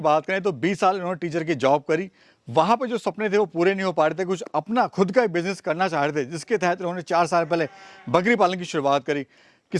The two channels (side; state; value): both; identical; correlation 1.00